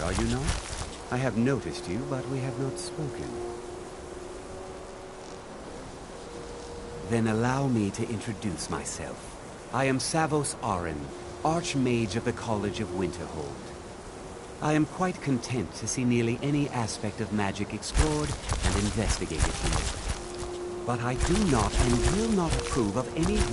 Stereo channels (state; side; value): identical; both; correlation 1.00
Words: are you not? I have noticed you, but we have not spoken. Then allow me to introduce myself. I am Savos Arin, Archmage of the College of Winterhold. I am quite content to see nearly any aspect of magic explored and investigated here. But I do not and will not approve of any